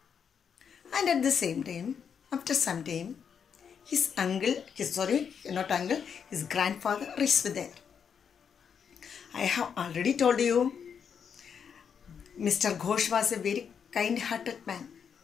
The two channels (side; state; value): right; quieter; 7.1 dB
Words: And at the same time, after some time, his grandfather reached there. I have already told you, Mr. Ghosh was a very kind-hearted man.